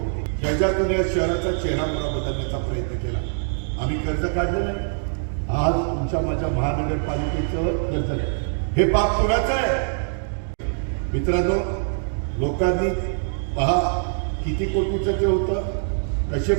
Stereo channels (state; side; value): silent; left; digital silence